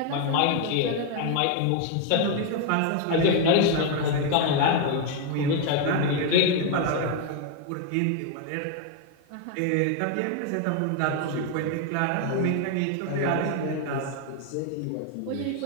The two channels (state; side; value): different; both; correlation 0.01